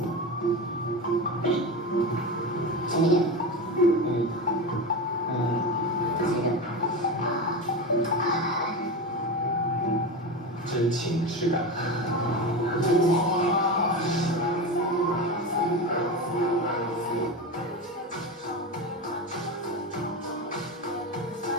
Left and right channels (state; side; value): normal; both; correlation 0.22